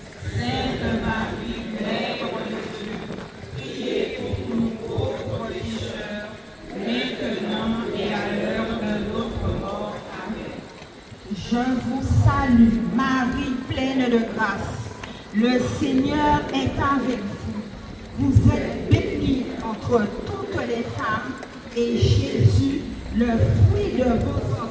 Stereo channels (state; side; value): identical; both; correlation 1.00